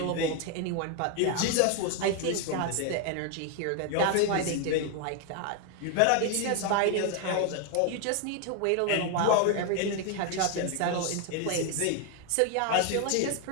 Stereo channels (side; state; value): both; different; correlation 0.01